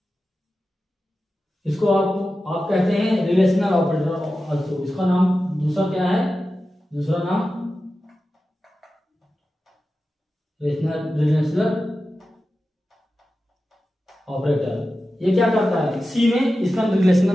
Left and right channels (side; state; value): both; normal; correlation 0.93